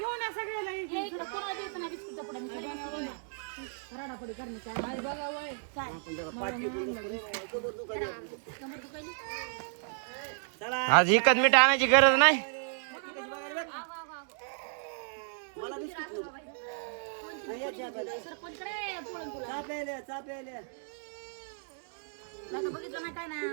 या सगळ्याला इकडे कोणा द्यायचं नाही बिस्कुटचा पुडा मी रडापडी करणे काय बघा वय काय चला आज एकच मीठ आणायची गरज नाही. मला बिस्किट चापेल्या बघितलं नाही काय नाही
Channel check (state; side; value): silent; left; digital silence